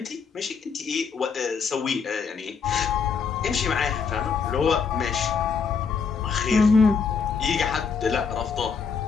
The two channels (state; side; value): quieter; right; 5.7 dB